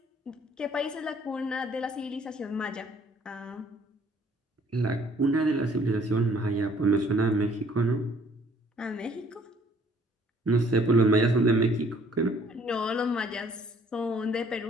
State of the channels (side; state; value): both; normal; correlation 0.60